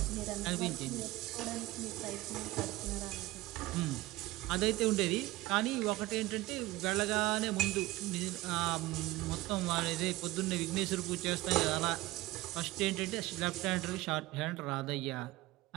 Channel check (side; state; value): left; quieter; 18.8 dB